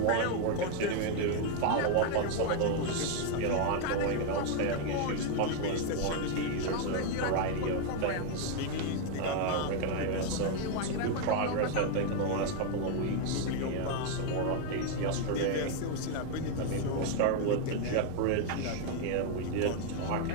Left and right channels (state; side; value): different; both; correlation 0.01